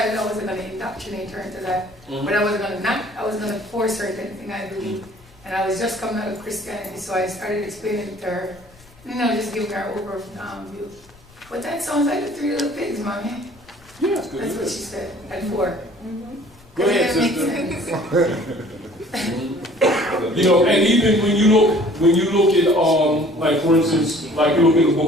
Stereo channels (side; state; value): left; noise; rumble, 26 dB below the sound